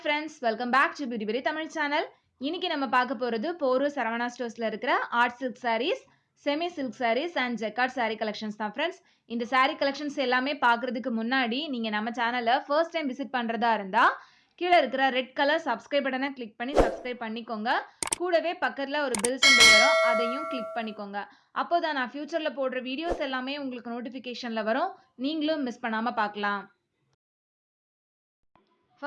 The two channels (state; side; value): identical; both; correlation 1.00